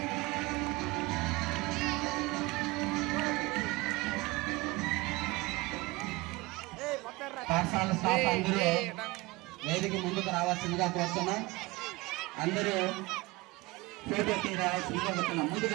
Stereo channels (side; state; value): left; quieter; 22.3 dB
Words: పాఠశాల స్టాఫ్ అందరూ వేదిక ముందుకు రావాల్సిందిగా కోరుతున్నాం. అందరూ ఫోటో తీ రావాల్సిందిగా కోరుతున్నాం. ముందుకు